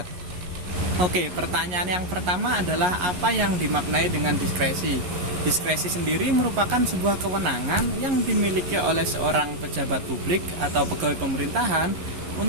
Oke, pertanyaan yang pertama adalah apa yang dimaknai dengan diskresi? Diskresi sendiri merupakan sebuah kewenangan yang dimiliki oleh seorang pejabat publik atau pegawai pemerintahan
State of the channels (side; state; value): left; late; 11 ms